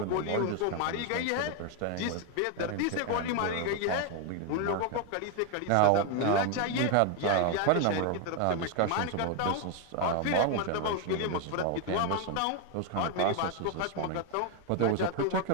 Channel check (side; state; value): both; different; correlation 0.01